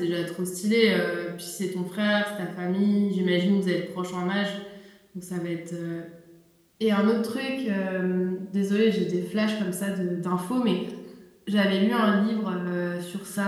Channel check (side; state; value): both; identical; correlation 1.00